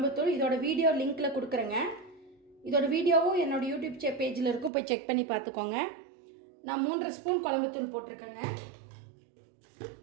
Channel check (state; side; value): drops out; left; at 4.7 s